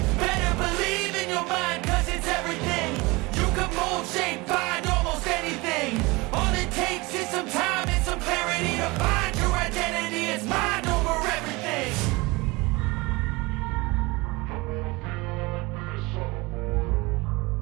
Better believe in your mind, cause it's everything. You can mold, shape, find almost anything. All it takes is some time and some clarity to find your identity. It's mind over everything.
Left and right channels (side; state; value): left; quieter; 23.9 dB